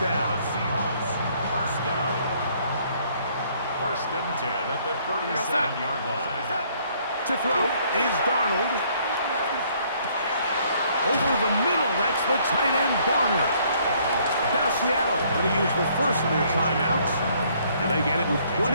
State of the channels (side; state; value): both; inverted; correlation -0.64